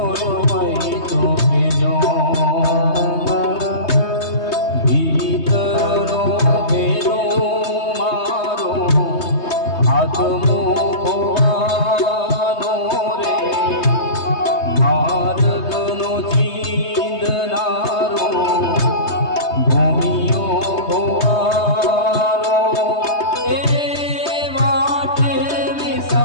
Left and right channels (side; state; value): right; late; 3.2 ms